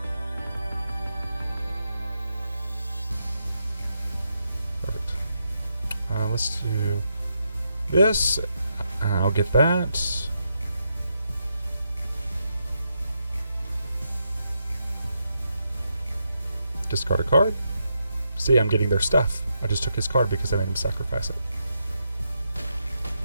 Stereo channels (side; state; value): both; inverted; correlation -0.82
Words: Perfect. Let's do this. I'll get that. Discard a card. See, I'm getting their stuff. I just took his card because I made him sacrifice it.